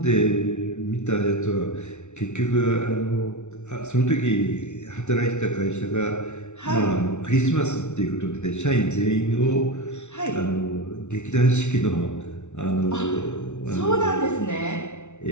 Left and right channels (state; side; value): late; right; 0.83 ms